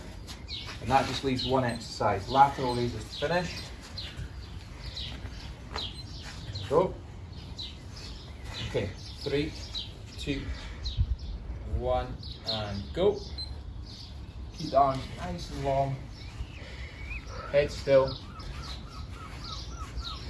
And that just leaves 1 exercise. Lateral raises to finish. Go. Okay, 3, 2, 1, and go. Keep the arms nice and long. Head still.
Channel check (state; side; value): identical; both; correlation 1.00